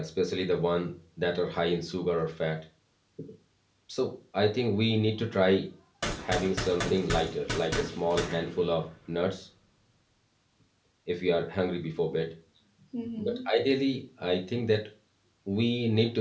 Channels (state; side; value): identical; both; correlation 1.00